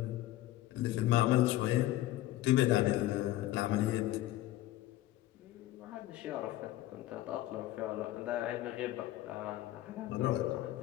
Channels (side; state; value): right; quieter; 15.1 dB